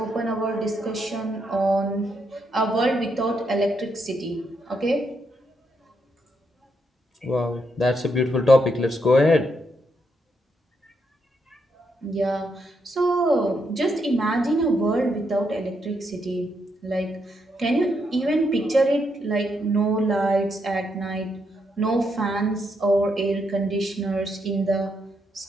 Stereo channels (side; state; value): both; normal; correlation 0.79